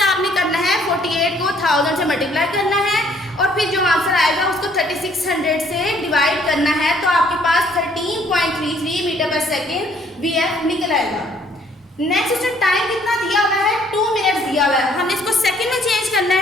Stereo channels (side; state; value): both; normal; correlation 0.62